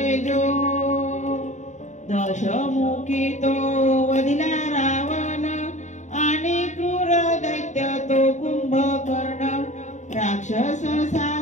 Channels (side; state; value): right; late; 0.34 ms